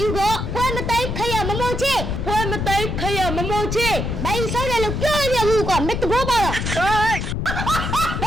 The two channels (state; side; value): noise; left; rumble, 3 dB below the sound